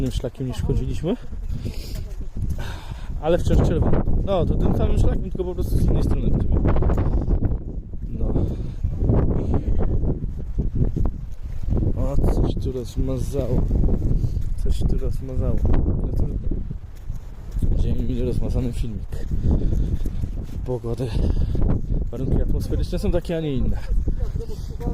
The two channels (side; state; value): both; identical; correlation 1.00